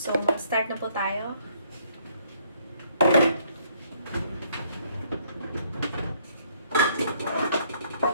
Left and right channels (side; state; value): both; inverted; correlation -0.66